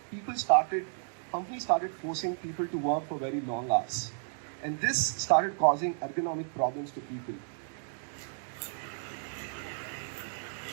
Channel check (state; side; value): silent; left; digital silence